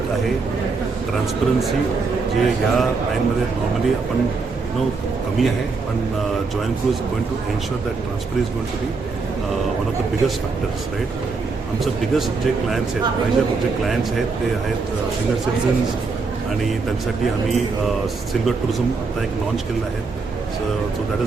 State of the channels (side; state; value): left; quieter; 4.4 dB